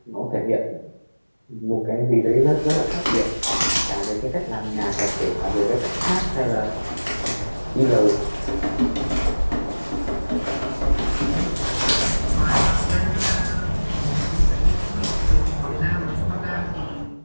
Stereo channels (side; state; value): both; inverted; correlation -1.00